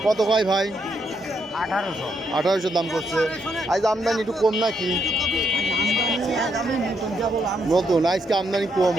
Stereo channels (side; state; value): both; normal; correlation 0.77